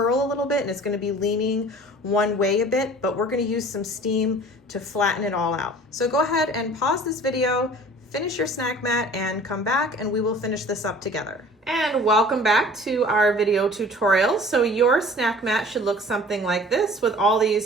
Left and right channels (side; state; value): both; normal; correlation 0.46